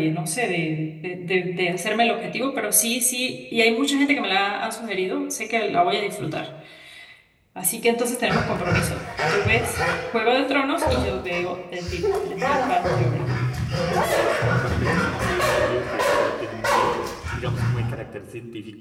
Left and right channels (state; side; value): identical; both; correlation 1.00